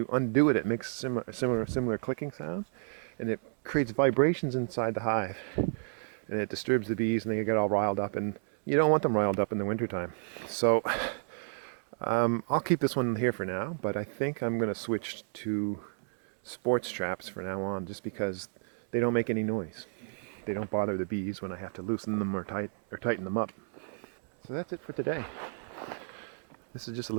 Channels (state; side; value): silent; left; digital silence